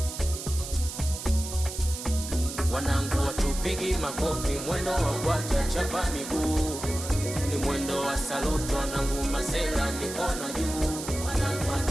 Wanangu watupigi makofi, mwendo wa kwata chapa miguu, ni mwendo wa saluto, wanangu masela mikono juu. Wanangu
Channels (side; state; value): right; noise; hiss, 8 dB below the sound